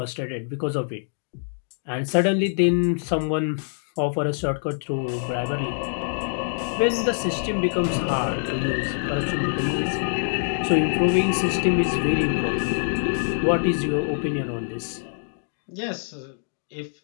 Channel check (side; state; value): right; silent; digital silence